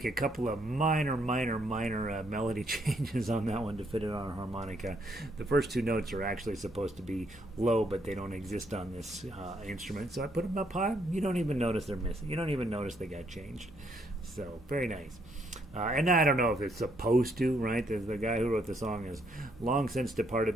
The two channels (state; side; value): normal; both; correlation 0.72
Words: a couple of minor melody changes on that one to fit it on a harmonica. The first two notes are actually supposed to be low, but they don't exist on this instrument, so I put them up high. You don't even notice they're missing. You don't even notice they got changed. So very nice. And I don't know if it's supposed to, right? The guy who wrote the song is long since